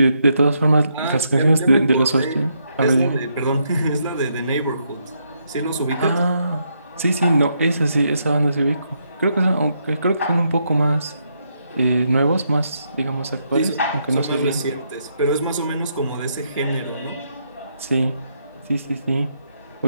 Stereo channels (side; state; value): both; inverted; correlation -0.78